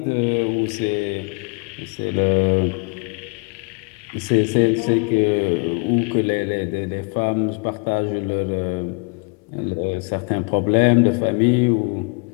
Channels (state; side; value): quieter; right; 33.8 dB